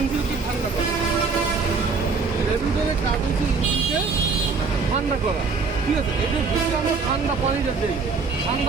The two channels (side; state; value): left; quieter; 4.7 dB